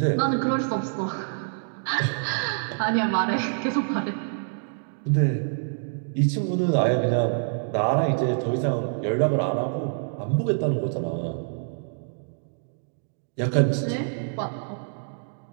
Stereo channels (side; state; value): left; silent; digital silence